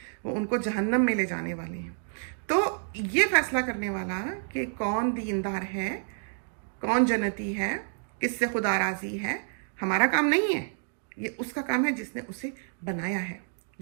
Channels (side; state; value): left; silent; digital silence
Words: वो उनको जहन्नम में ले जाने वाले हैं। तो ये फैसला करने वाला कि कौन दीनदार है, कौन जन्नती है, किससे खुदा राजी है, हमारा काम नहीं है। ये उसका काम है जिसने उसे बनाया है,